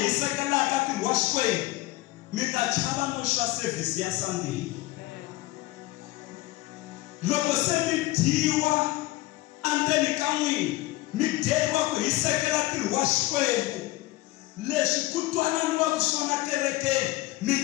hisekelaka ntirho wa Xikwembu, mi ta chava no swa service ya Sunday. Loko se mi dyiwa endzeni ka n'wina, mi dyeriwa ku hisekela ntirho wa Xikwembu, leswi ku twananiwaka swona kerekeni, mi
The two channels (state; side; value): quieter; right; 18.6 dB